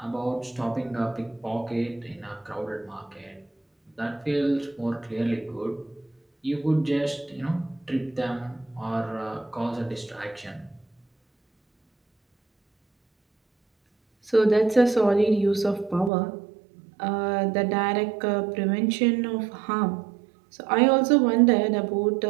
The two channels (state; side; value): drops out; left; at 16.1 s